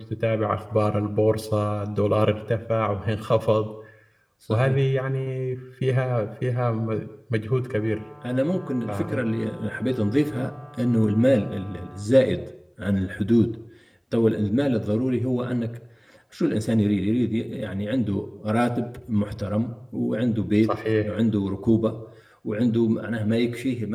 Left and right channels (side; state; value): both; identical; correlation 1.00